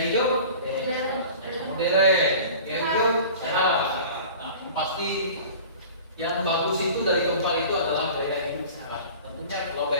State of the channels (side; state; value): both; inverted; correlation -0.41